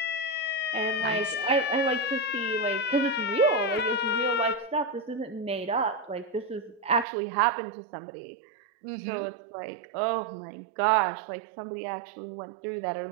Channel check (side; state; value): left; drops out; at 7.1 s